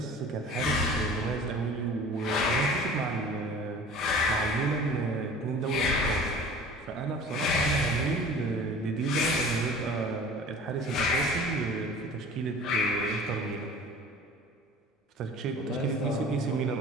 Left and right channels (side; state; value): both; normal; correlation 0.42